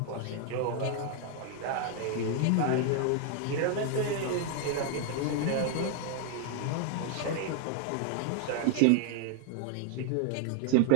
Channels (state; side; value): different; both; correlation 0.00